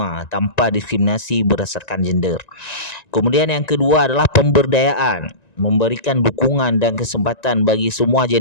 tanpa diskriminasi berdasarkan gender. Kemudian yang kedua adalah pemberdayaan, memberikan dukungan dan kesempatan bagi semua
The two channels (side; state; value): right; late; 1.9 ms